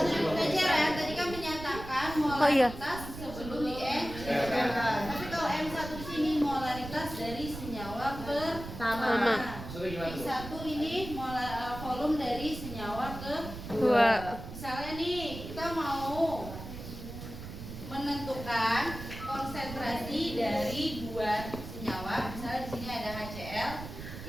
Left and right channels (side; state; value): right; noise; rumble, 10 dB below the sound